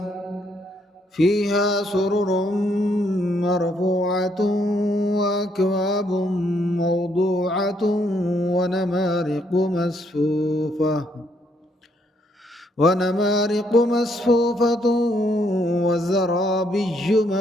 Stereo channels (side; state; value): both; normal; correlation 0.72